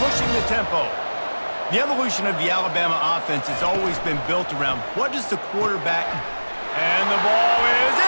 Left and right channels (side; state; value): both; inverted; correlation -1.00